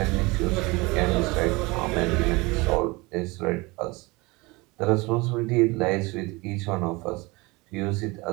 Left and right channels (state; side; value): quieter; left; 24.3 dB